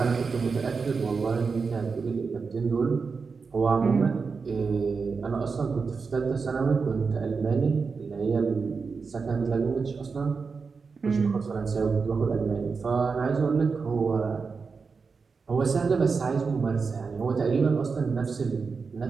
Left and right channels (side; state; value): left; quieter; 5.0 dB